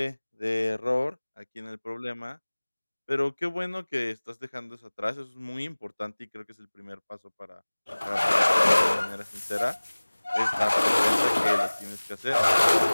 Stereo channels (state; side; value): inverted; both; correlation -1.00